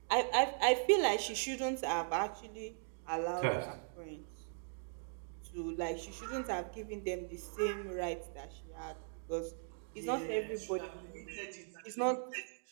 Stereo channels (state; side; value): silent; left; digital silence